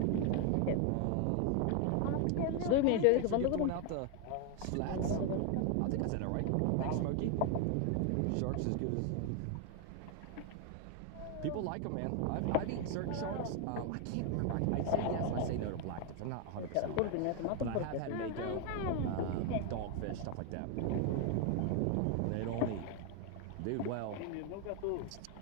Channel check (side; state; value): both; different; correlation 0.01